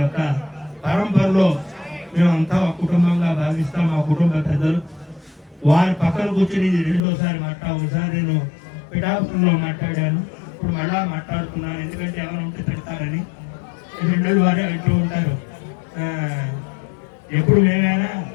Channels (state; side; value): drops out; right; at 7.0 s